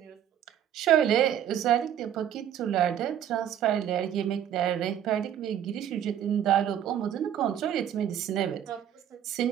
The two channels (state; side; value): quieter; left; 10.1 dB